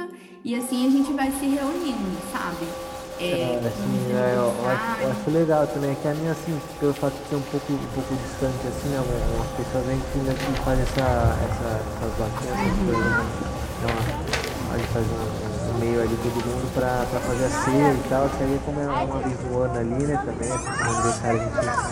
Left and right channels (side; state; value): both; identical; correlation 1.00